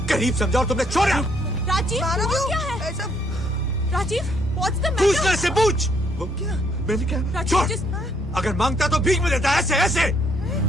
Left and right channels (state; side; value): normal; both; correlation 0.69